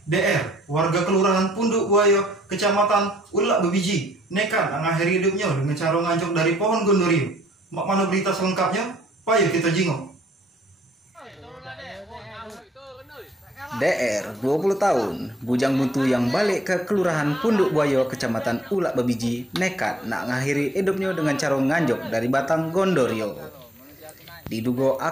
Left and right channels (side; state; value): both; normal; correlation 0.64